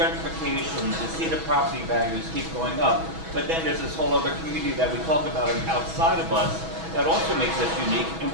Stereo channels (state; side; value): late; left; 6.2 ms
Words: to see the property values keep going up. But then there's this whole other community that we talk about outside of us that also makes us unique. And